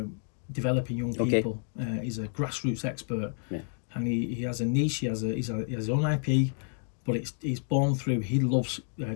developing young people. He's a grassroots expert, and he has a niche. He has his own IP, but he's born through. He loves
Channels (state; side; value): silent; right; 58 dB below the other